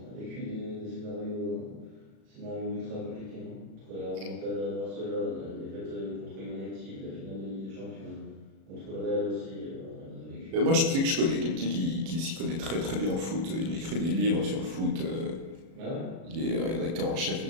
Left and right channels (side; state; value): left; late; 36 ms